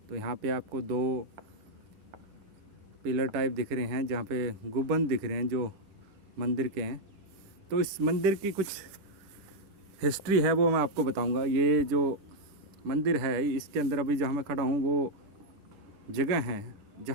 तो यहाँ पे आपको दो पिलर टाइप दिख रहे हैं जहाँ पे गुंबद दिख रहे हैं जो मंदिर के हैं। तो इस मंदिर की कुछ हिस्ट्री है वो मैं आपको बताऊंगा। ये जो मंदिर है इसके अंदर अभी जहाँ मैं खड़ा हूँ वो जगह है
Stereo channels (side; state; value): left; late; 10 ms